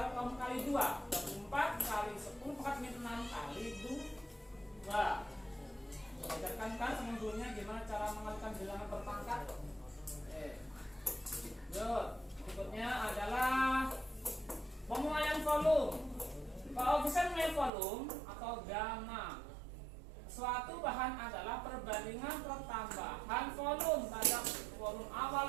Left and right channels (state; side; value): drops out; left; at 17.7 s